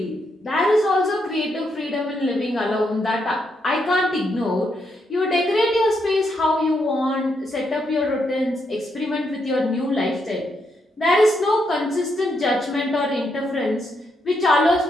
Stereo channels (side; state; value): both; normal; correlation 0.79